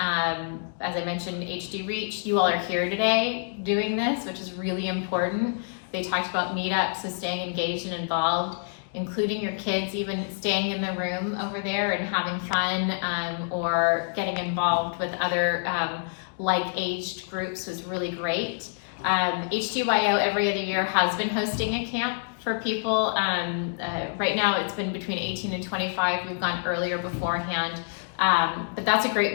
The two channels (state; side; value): silent; right; digital silence